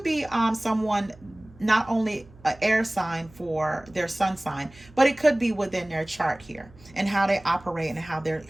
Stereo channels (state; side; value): noise; right; hum, 24 dB below the sound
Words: be someone, not only an air sign for their sun sign, but it could be within their chart here and how they operate and